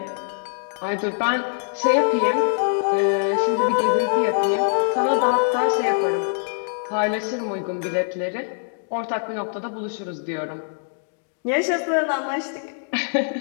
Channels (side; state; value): right; silent; digital silence